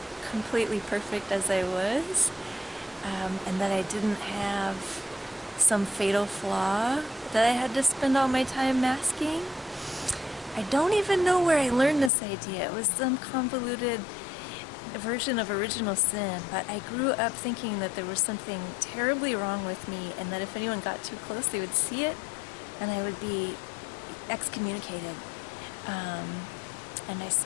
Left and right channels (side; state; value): right; drops out; at 12.1 s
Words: completely perfect as I was, and that I didn't have some fatal flaw that I had to spend all my time masking. I don't even know where I learned this idea. It was some convoluted version of original sin, but I grew up thinking that there was something terribly wrong with me and that if anyone got too close they would see it and I would be excommunicated. And I